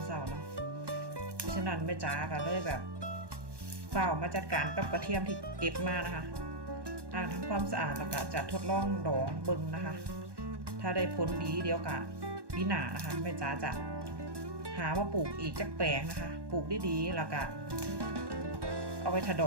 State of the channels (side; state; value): left; late; 1.1 ms